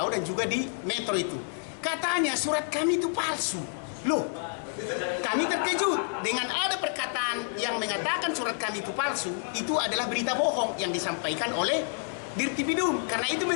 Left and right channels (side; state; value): right; silent; 59 dB below the other